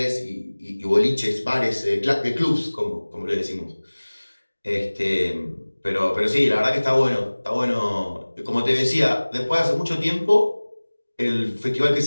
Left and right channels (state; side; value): inverted; both; correlation -1.00